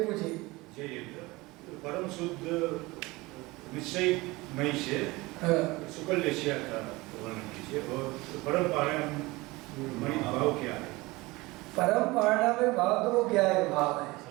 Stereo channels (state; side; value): quieter; left; 21.9 dB